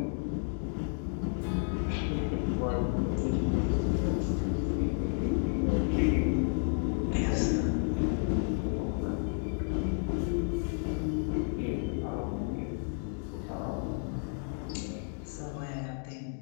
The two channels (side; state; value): right; silent; 57 dB below the other